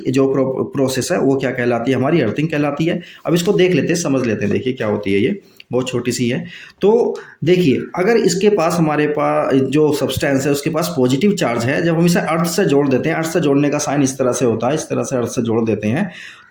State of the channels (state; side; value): identical; both; correlation 1.00